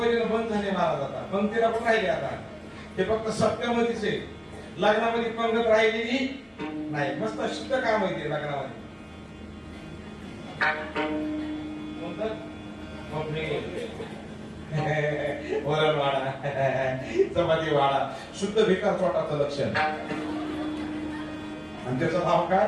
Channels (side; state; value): both; identical; correlation 1.00